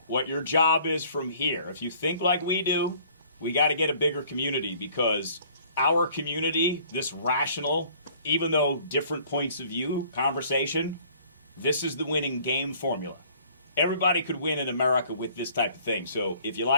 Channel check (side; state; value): both; inverted; correlation -0.55